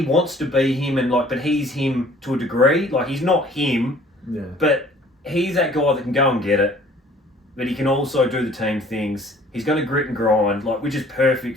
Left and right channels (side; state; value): both; normal; correlation 0.54